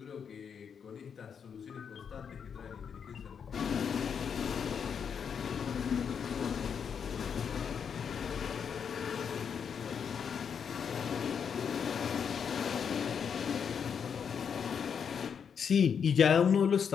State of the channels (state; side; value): quieter; right; 7.1 dB